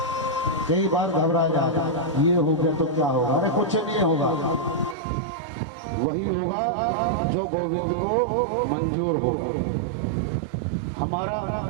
कई बार घबरा जाता, ये हो गया तो क्या होगा? अरे कुछ नहीं होगा, वही होगा जो गोविंद को मंजूर होगा। हमारा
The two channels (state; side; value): drops out; left; at 5.0 s